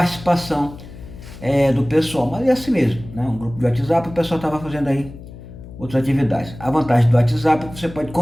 do pessoal, mas é assim mesmo, né? Um grupo de WhatsApp, o pessoal estava fazendo aí outras atividades. A vantagem do WhatsApp é que você pode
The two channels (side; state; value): left; noise; hum, 16 dB below the sound